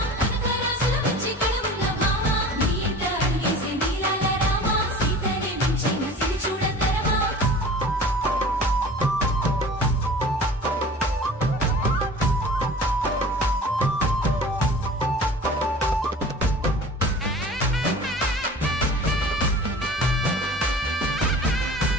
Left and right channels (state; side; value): normal; both; correlation 0.41